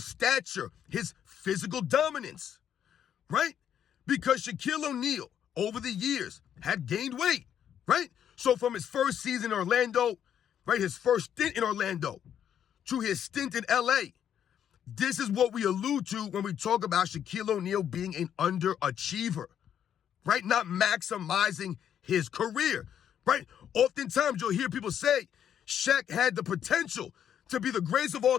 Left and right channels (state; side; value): quieter; right; 9.4 dB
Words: stature, his physical dominance, right? Because Shaquille O'Neal, over the years, had gained weight. Right? So from his first season in Orlando, right, his first stint in Orlando, to his stint in LA, this is what we allude to when we talk about Shaquille O'Neal being an underachiever, right? Not maximizing his career. right? Oftentimes you'll hear people say Shaq had the potential to be the greatest of all